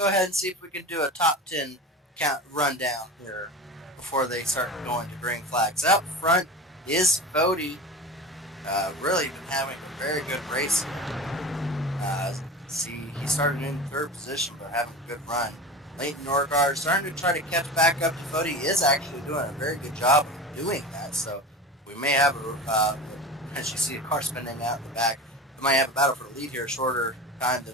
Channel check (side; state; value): both; normal; correlation 0.31